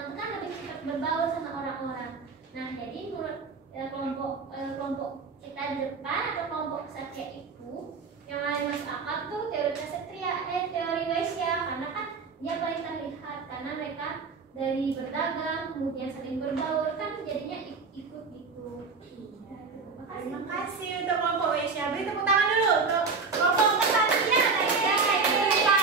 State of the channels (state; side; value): quieter; left; 4.7 dB